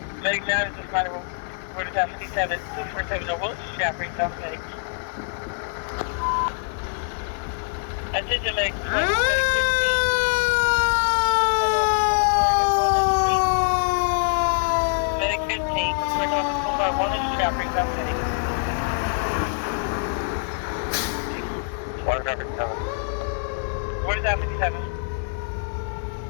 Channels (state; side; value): silent; right; 62 dB below the other